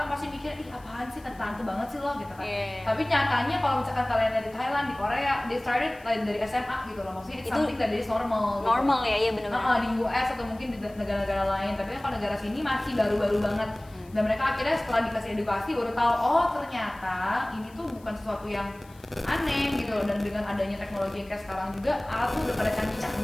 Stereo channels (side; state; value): left; noise; hiss, 27 dB below the sound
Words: pasti mikir ih apaan sih, tante banget sih lo gitu kan. Tapi nyatanya kalau misalkan kalian dari Thailand, di Korea, they started dari SMA gitu loh. Maksudnya it's something that is normal gitu. Normal ya, iya benar-benar. Di US atau mungkin di negara-negara lain. Tapi kan kalau negara sini masih baru-baru banget. Dan mereka akhirnya setelah dikasih edukasi baru tahu oh ternyata ini tuh bukan sesuatu yang aneh gitu loh. Dan dengan adanya teknologi yang kayak sekarang juga alat tuh udah pada